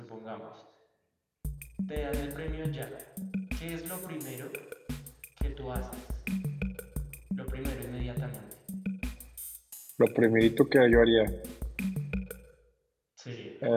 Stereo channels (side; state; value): both; identical; correlation 1.00